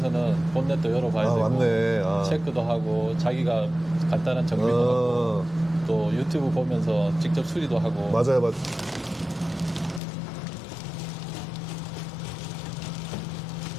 본넷도 열어봐야 되고 맞네. 체크도 하고 자기가 간단한 정비도 하고 또 유튜브 보면서 직접 수리도 하고 맞아요.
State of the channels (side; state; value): right; drops out; at 10.0 s